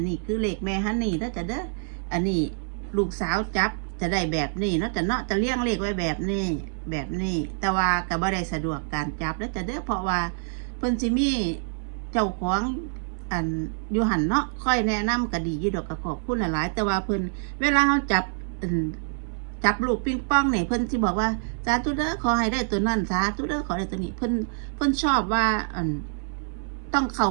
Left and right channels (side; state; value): left; silent; 60 dB below the other